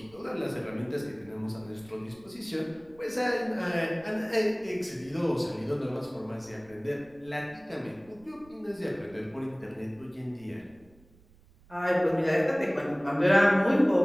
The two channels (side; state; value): right; noise; rumble, 27 dB below the sound